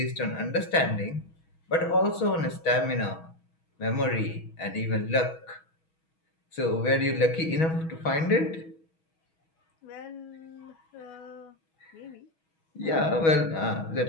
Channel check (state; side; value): late; right; 6.2 ms